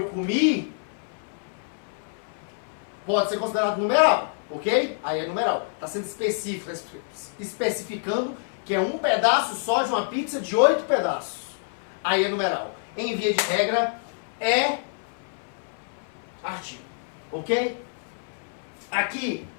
comi pode ser considerado numeral, ok? Aí é numeral. Está sendo específico, especificando que é um pedaço só de uma pizza de 8 pedaços. Aí é numeral. Em via de regra, é artigo, ok? Aqui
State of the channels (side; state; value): right; silent; 56 dB below the other